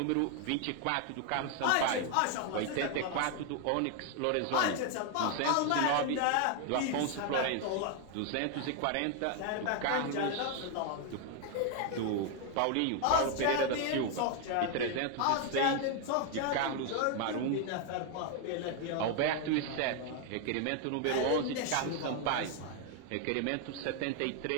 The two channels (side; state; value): both; different; correlation 0.00